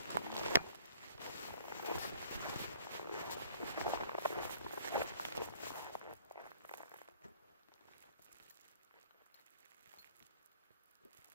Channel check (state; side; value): inverted; both; correlation -0.52